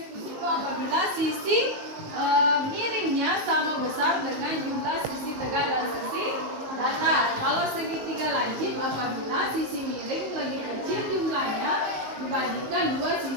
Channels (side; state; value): left; late; 19 ms